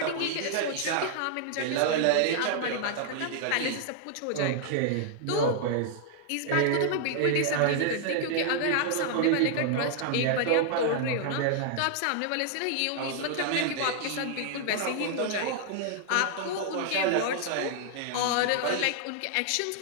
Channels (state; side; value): different; both; correlation -0.01